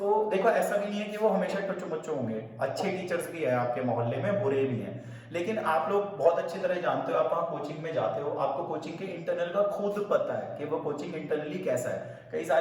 देखो, ऐसा भी नहीं है कि वो हमेशा टुच्चू मुच्चू होंगे, अच्छे टीचर्स भी हैं आपके मोहल्ले में, बुरे भी हैं, लेकिन आप लोग बहुत अच्छी तरह जानते हो, आप वहाँ कोचिंग में जाते हो, आपको कोचिंग के इंटरनल का खुद पता है कि वो कोचिंग इंटरनली कैसा है। कई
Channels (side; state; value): both; identical; correlation 1.00